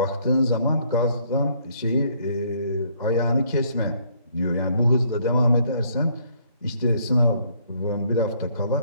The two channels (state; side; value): inverted; both; correlation -0.66